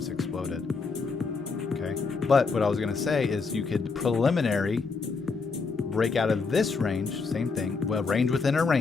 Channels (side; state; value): right; quieter; 4.6 dB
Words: exploded. Okay. But what I was going to say is you could preliminary break out of this range. Same thing. Well, range within a